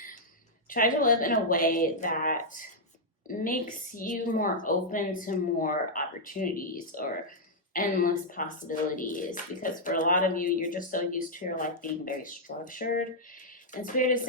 Try to live in a way that makes you more open to more opportunities or endless possibilities, because for a lot of you, you're just so used to your life being very structured, and Spirit is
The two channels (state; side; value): normal; both; correlation -0.05